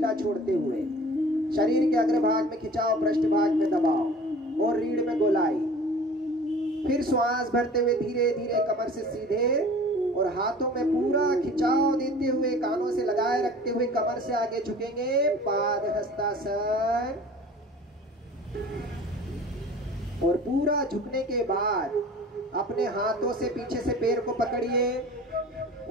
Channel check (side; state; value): both; normal; correlation 0.44